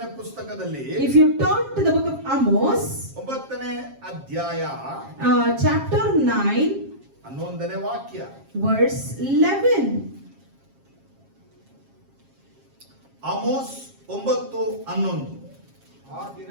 ಪುಸ್ತಕದಲ್ಲಿ If you turn to the book of Amos, 9ನೇ ಅಧ್ಯಾಯ chapter 9, 11ನೇ ವಾಕ್ಯ. verse 11. ಆಮೋಸ್ 9:11. ಆ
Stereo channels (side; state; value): left; late; 7.4 ms